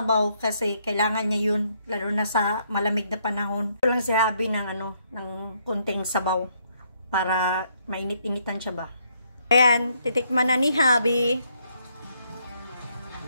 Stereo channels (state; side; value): inverted; both; correlation -0.71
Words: kasi kailangan niya yun, lalo na sa malamig na panahon. Ito lang si Habi ng ng kunting sabaw para mainit-initan siya ba. Ayan, titikman na ni Habi.